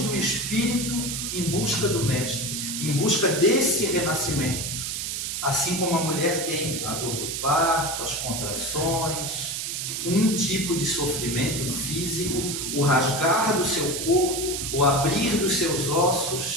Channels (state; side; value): noise; right; hiss, 3 dB below the sound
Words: espírito em busca do Mestre, em busca desse renascimento. Assim como a mulher tem a dor do parto, as contrações, um tipo de sofrimento físico, o rasgar do seu corpo, o abrir dos seus